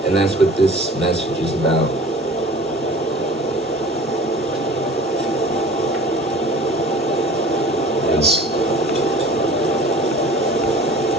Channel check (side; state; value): both; normal; correlation 0.43